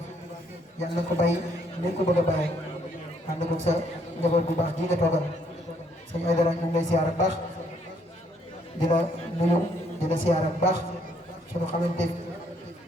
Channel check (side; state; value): both; normal; correlation 0.68